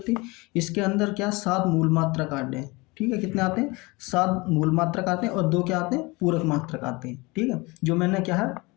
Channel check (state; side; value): quieter; right; 24.7 dB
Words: इसके अंदर क्या 7 मूल मात्रक आते हैं, ठीक है, कितने आते हैं, 7 मूल मात्रक आते हैं और 2 क्या आते हैं, पूरक मात्रक आते हैं, ठीक है, जो मैंने क्या है